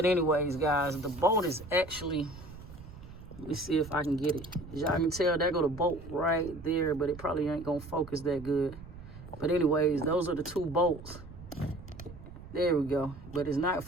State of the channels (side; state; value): right; noise; rumble, 15 dB below the sound